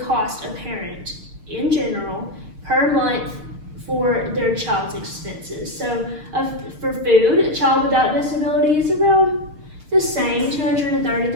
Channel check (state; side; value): late; left; 6.5 ms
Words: cost a parent in general per month for their child's expenses. So for food, a child without disability is around the same,